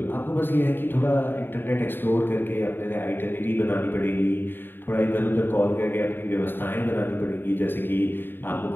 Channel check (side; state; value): right; late; 0.097 ms